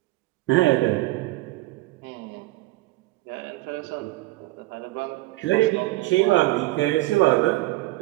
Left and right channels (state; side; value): quieter; left; 18.8 dB